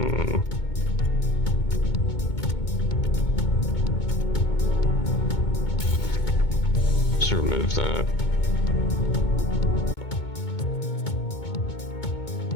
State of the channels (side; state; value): right; late; 2.2 ms